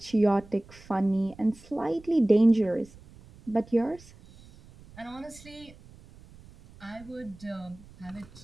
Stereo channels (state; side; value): noise; right; rumble, 22 dB below the sound